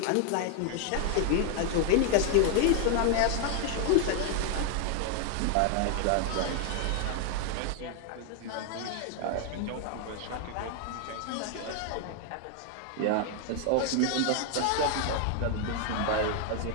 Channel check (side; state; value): both; different; correlation 0.00